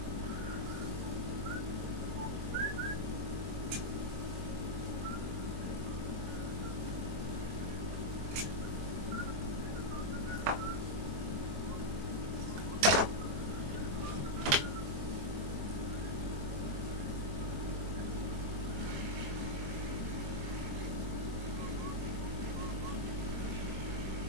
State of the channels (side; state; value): left; late; 23 ms